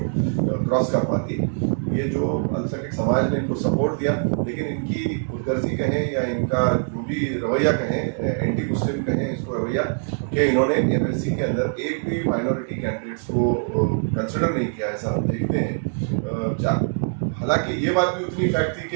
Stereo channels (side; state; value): left; silent; 63 dB below the other